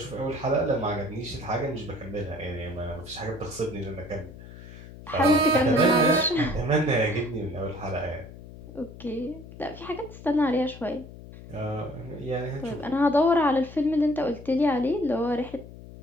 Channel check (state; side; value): noise; left; hum, 16 dB below the sound